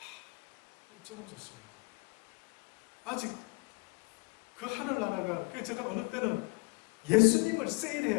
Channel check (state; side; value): quieter; right; 29.5 dB